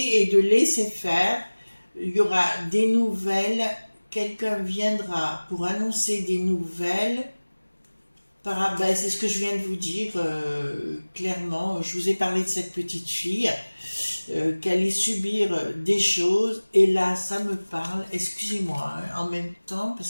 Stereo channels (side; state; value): both; inverted; correlation -1.00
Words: et de laisser faire, il y aura des nouvelles, quelqu'un viendra pour annoncer des nouvelles. Ben, c'est ce que je viens de vous dire clairement. Je vous ai parlé de cette petite fille qui allait subir des choses, et là ça me parle, excusez-moi, hein, en même temps